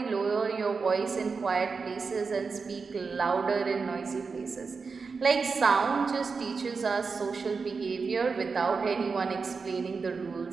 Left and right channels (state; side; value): quieter; left; 4.9 dB